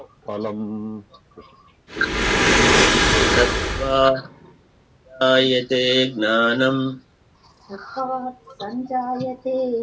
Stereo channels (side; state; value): both; identical; correlation 1.00